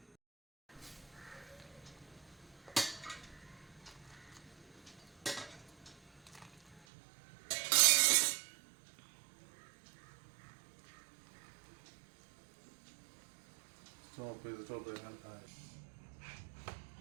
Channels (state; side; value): drops out; left; at 6.8 s